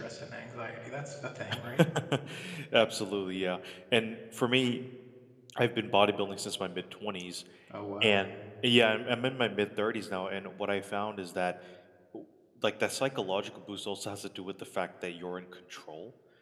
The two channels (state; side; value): identical; both; correlation 1.00